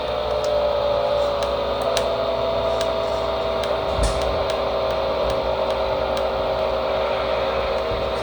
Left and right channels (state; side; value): identical; both; correlation 1.00